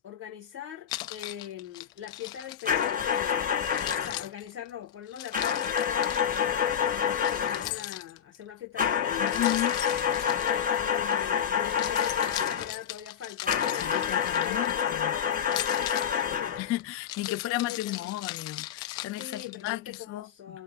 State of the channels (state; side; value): quieter; right; 8.8 dB